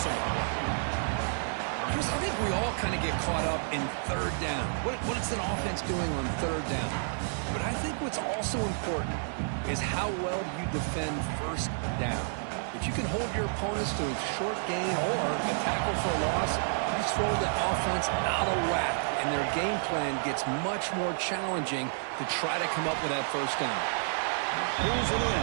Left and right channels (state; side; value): silent; left; digital silence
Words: of the play. Chris, I think we all kind of get caught up in third down. What is an offense doing on third down? But I think what's also important is how well you defend first down. If you can hold your opponents to a short gain or a tackle for a loss, you throw the offense out of whack, and their game plan gets much more challenging to try to come up with that first down. Pulls it